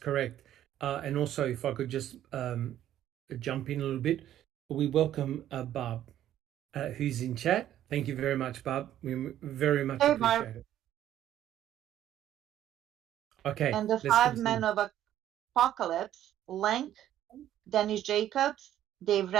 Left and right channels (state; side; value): quieter; left; 11.9 dB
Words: And also, if I could just jump in a little bit, we welcome Barb, who's in chat. Thank you very much, Barb. We very much appreciate it. Okay. And the 5 men of Apocalypse: Lenk, Dennis Jacobs, Dave